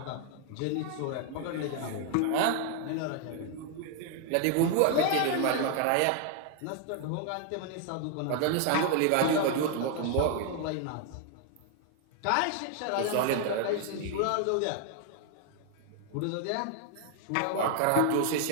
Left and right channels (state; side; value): different; both; correlation 0.00